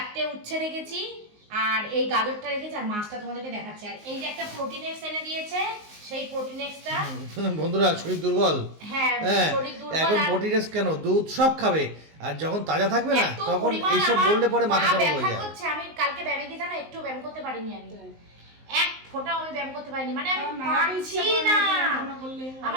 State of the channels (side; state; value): left; late; 19 ms